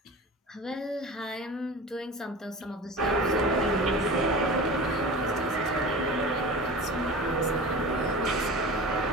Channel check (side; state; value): both; normal; correlation 0.34